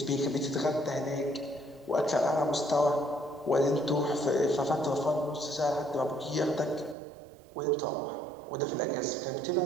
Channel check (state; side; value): drops out; left; at 7.0 s